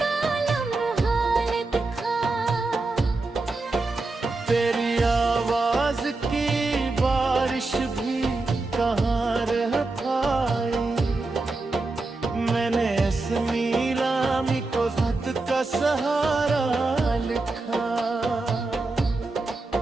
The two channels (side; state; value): left; quieter; 3.4 dB